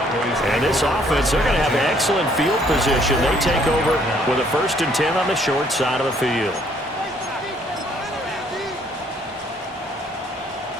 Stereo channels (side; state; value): both; normal; correlation 0.64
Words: And this offense, they're going to have excellent field position. They take over with a 1st and 10 on the short side of the field.